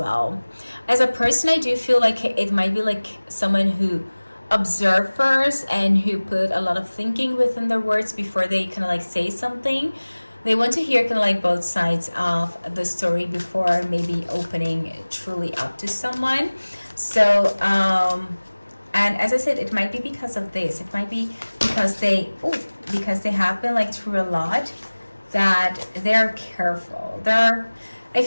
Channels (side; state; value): both; inverted; correlation -1.00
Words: As a person, I do feel like it might be like someone who observe first and who put a lot of thinking within their words before they kind of like say something. They want to hear kind of like both sides of the story before maybe opening truly up to someone. So and as I said, it might be because of this. It might be because they have been like through a lot, that they're careful. I